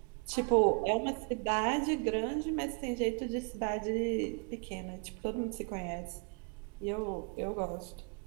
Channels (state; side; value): quieter; left; 36.5 dB